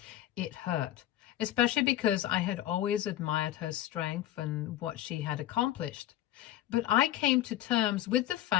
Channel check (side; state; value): right; quieter; 13.4 dB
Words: It hurt, especially because I had always admired her strength and what she had accomplished. But I came to terms with the